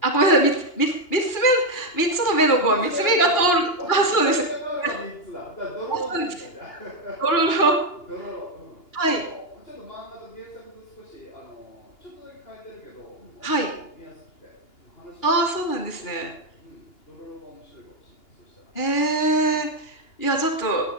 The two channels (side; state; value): right; late; 2.8 ms